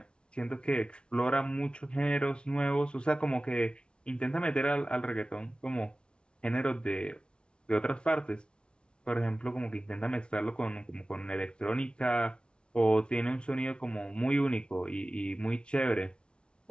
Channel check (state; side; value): late; right; 0.057 ms